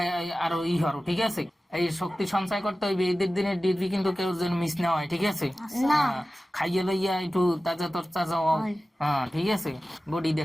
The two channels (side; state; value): both; normal; correlation 0.96